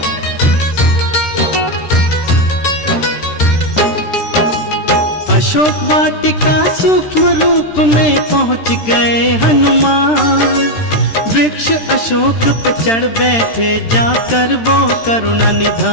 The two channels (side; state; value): right; late; 13 ms